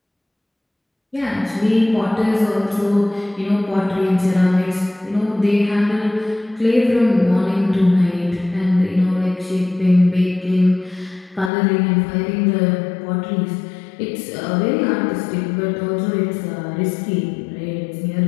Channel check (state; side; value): drops out; right; at 11.5 s